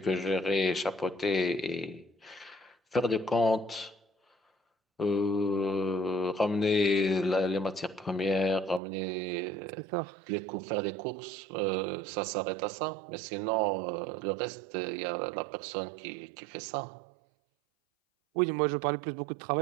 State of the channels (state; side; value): drops out; left; at 8.8 s